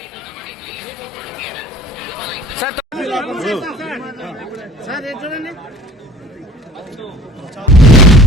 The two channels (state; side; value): normal; both; correlation 0.49